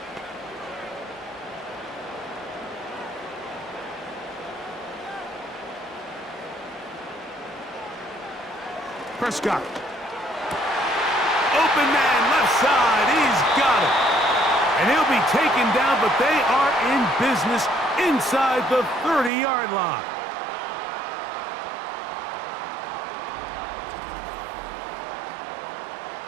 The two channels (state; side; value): drops out; left; at 19.3 s